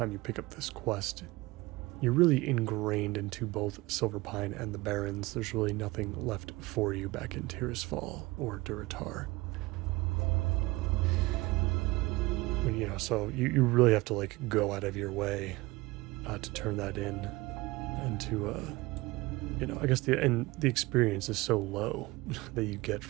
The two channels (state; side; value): quieter; left; 21.4 dB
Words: you pick up this quest, you're really ingrained into both Silverpine and the Barrens. There's really nothing left for you back in Tirisfal or Durotar. When, you know, so you really have to like go out of your way to turn that in, and to you know, I guess the experience is so low that you get